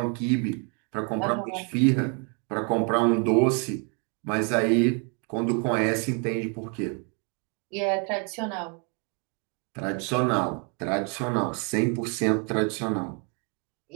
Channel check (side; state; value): left; quieter; 36.4 dB